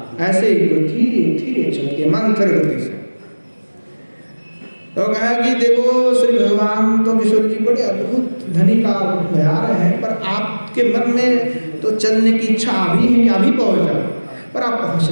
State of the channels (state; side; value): inverted; both; correlation -1.00